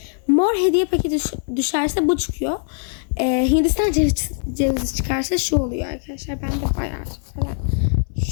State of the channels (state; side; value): silent; right; 62 dB below the other